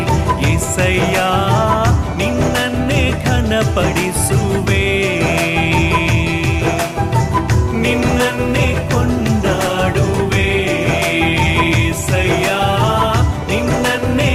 యేసయ్య ನಿನ್ನನ್ನೇ ಘನಪಡಿಸುವೆ ನಿನ್ನನ್ನೇ ಕೊಂಡಾಡುವೆ యేసయ్య ನಿನ್ನನ್ನೇ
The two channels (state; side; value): identical; both; correlation 1.00